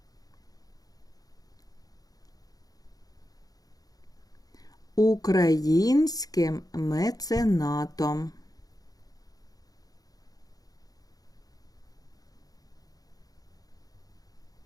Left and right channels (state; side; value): late; right; 0.18 ms